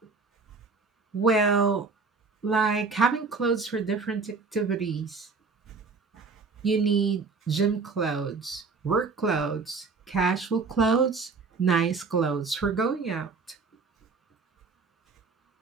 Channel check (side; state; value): left; quieter; 4.5 dB